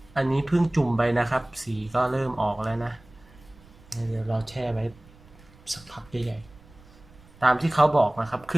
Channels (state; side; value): noise; right; rumble, 25 dB below the sound